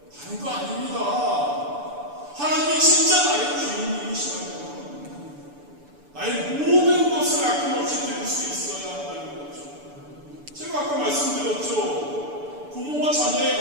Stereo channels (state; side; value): late; left; 6.9 ms